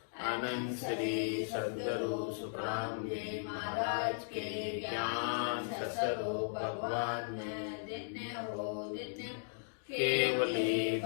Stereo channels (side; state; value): right; silent; digital silence